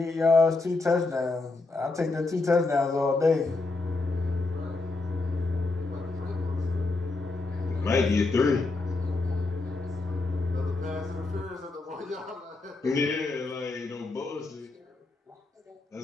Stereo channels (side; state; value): right; quieter; 3.4 dB